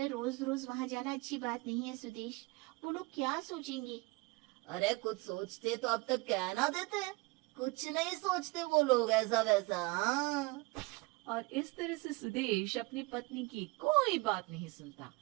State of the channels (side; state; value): left; quieter; 24.9 dB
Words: रोज रोज वहां जाना अच्छी बात नहीं है सुदेश, वो लोग क्या सोचेंगे? अरे कुछ सोचते तो अब तक कहना देते, कुछ नहीं सोचते वो लोग ऐसा वैसा। हाँ, और इस तरह से सुदेश अपनी पत्नी की कोई बात नहीं सुनता